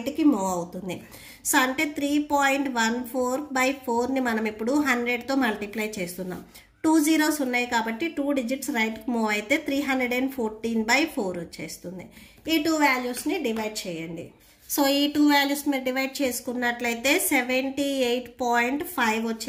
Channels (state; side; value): identical; both; correlation 1.00